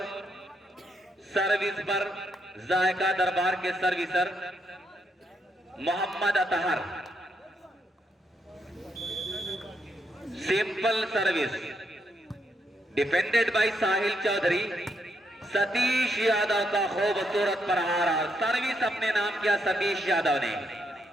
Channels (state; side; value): normal; both; correlation 0.77